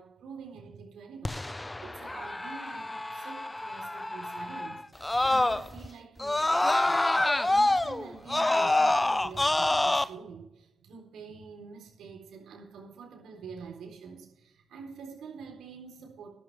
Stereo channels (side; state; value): both; normal; correlation 0.98